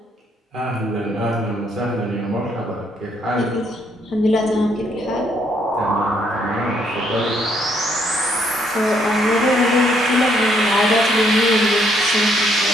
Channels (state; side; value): normal; both; correlation 0.70